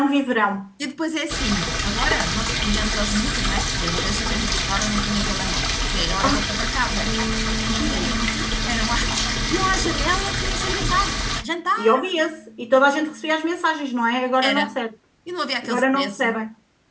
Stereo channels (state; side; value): identical; both; correlation 1.00